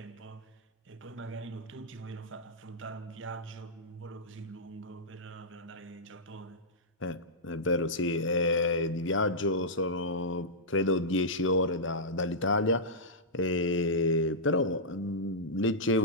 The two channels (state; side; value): normal; both; correlation -0.12